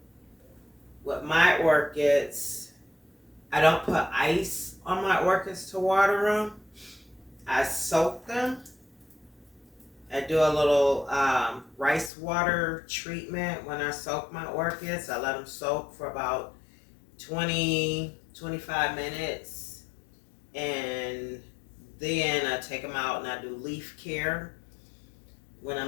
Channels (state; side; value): drops out; right; at 12.1 s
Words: with my orchids, I don't put ice on my orchids to water them. I soak them. I do a little rice water treatment when I soak my orchids. I let them soak for about 20-25 minutes. And then I take them out and I do leaf care. When